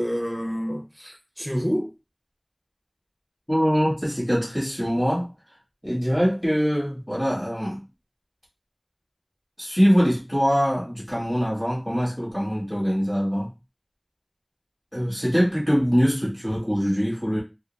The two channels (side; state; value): both; identical; correlation 1.00